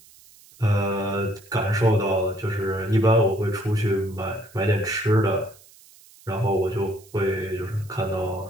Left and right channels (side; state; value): right; noise; hiss, 25 dB below the sound